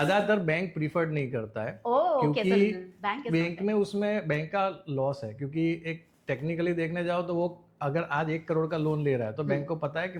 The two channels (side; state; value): both; identical; correlation 1.00